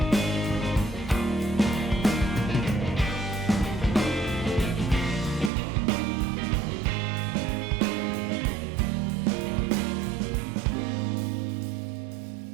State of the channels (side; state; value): left; drops out; at 5.5 s